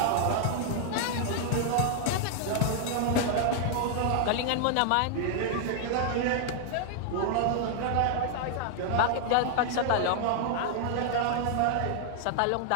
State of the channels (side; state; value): both; different; correlation -0.01